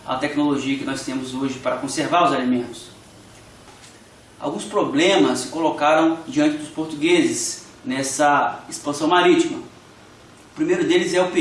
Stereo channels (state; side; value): identical; both; correlation 1.00